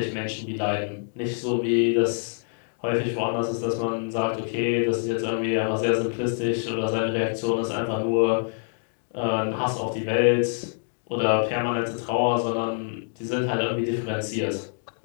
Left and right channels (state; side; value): silent; right; digital silence